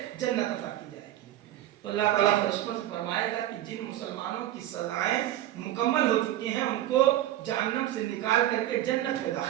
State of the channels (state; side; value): quieter; left; 13.5 dB